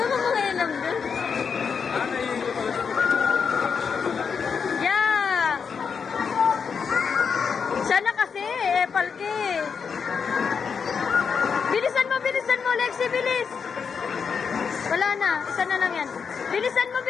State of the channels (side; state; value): right; quieter; 6.1 dB